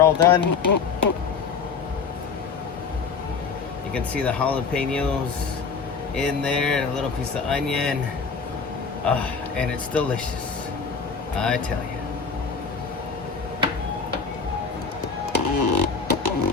all done. You can see the jalapenos in there, a little piece of onion, and it's delicious, I tell you.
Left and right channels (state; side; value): quieter; right; 5.4 dB